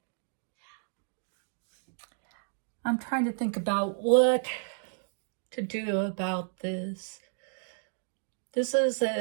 I'm trying to think about what to do about this. This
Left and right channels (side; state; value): left; silent; digital silence